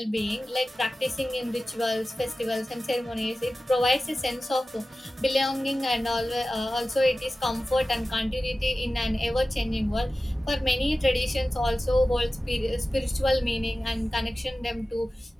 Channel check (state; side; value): normal; both; correlation 0.95